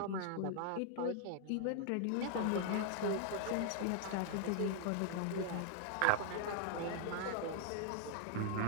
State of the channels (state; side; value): different; both; correlation 0.00